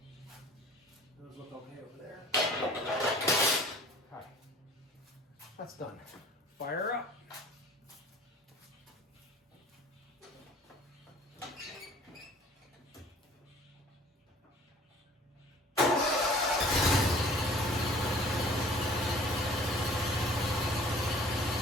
Those look okay over there. Okay, that's done. Fire up.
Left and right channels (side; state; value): both; normal; correlation 0.50